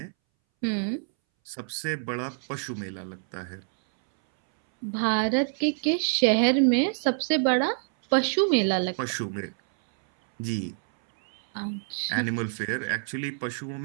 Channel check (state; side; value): silent; left; 60 dB below the other